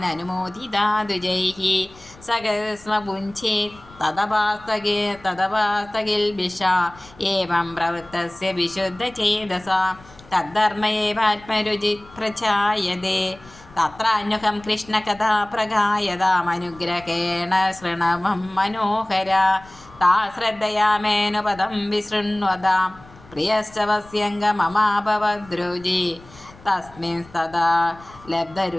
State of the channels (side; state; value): left; noise; rumble, 23 dB below the sound